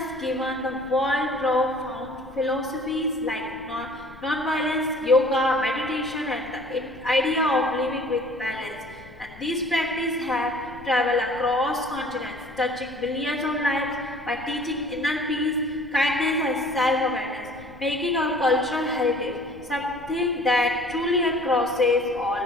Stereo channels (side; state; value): left; noise; rumble, 21 dB below the sound